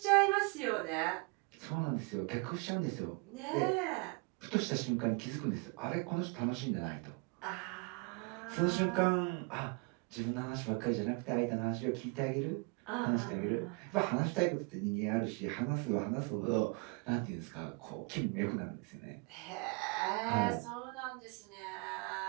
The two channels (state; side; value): quieter; left; 31.1 dB